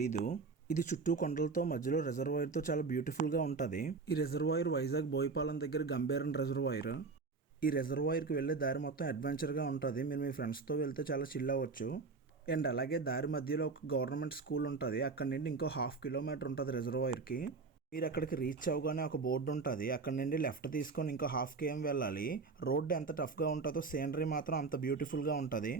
ఇది చుట్టూ కొండలతో మధ్యలో రిజర్వాయర్తో చాలా బ్యూటిఫుల్గా ఉంటుంది. ఈ రిజర్వాయర్ వైజాగ్ బోయపాలెం దగ్గర గంభీరం రిజర్వాయర్. ఈ రిజర్వాయర్కి వెళ్ళే దారి మొత్తం అడ్వెంచర్గా ఉంటుంది. మీరు మీ ఫ్రెండ్స్తో వెళ్తే చాలా చిల్ అవ్వచ్చు. అండ్ అలాగే దారి మధ్యలో ఒక గవర్నమెంట్ స్కూల్ ఉంటుంది. అక్కడ నుండి ఇంకో 1/2 కిలోమీటర్ ఉంటుంది రిజర్వాయర్కి. మీరు అక్కడికి రీచ్ అవ్వగానే ఒక బోర్డు ఉంటుంది. అక్కడ నుండి లెఫ్ట్ తీసుకొని ఇంకో 1/2 km వెళ్ళాలి. రోడ్డు ఎంత టఫ్గా ఉంటుందో సీనరీ మాత్రం అంత బ్యూటిఫుల్గా ఉంటుంది.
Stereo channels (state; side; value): quieter; left; 4.4 dB